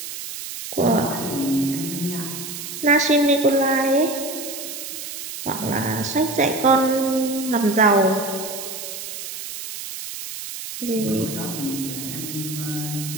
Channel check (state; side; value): noise; right; hiss, 8 dB below the sound